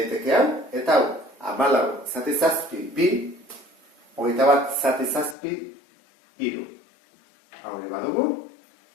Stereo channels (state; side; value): drops out; right; at 5.4 s